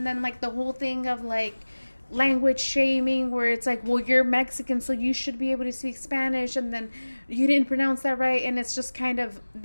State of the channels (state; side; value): inverted; both; correlation -1.00